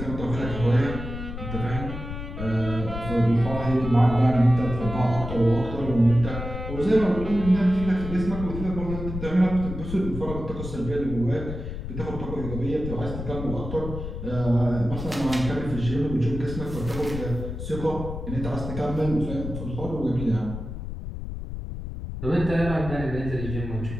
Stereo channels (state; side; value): noise; left; rumble, 7 dB below the sound